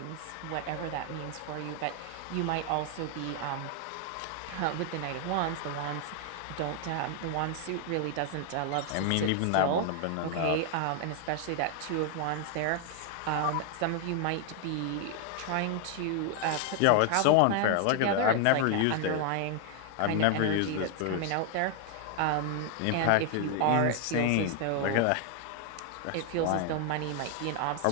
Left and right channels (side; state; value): both; different; correlation 0.00